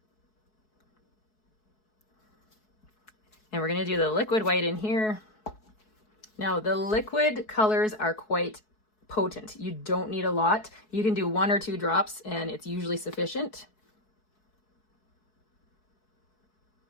And we're going to do the liquid white in here. Now the liquid colors are quite potent. You don't need a lot. You can do 1 or 2 drops and it's usually sufficient.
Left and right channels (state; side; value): late; right; 4.7 ms